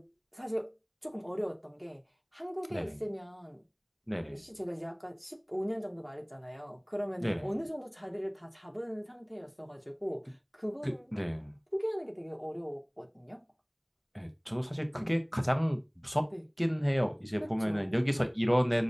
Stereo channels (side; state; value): both; identical; correlation 1.00